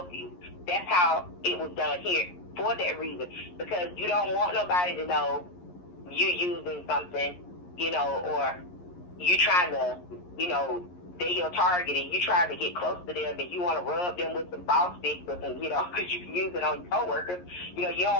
you. That's how it was done here, for that reason, because you don't want nobody to know you're using something, you know, or you trying to, you know, they're your target and you trying to get close to them and you want to rub them with some ball sticks or some, you know, because you can use it on your coworkers. You know, you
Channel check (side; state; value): right; late; 11 ms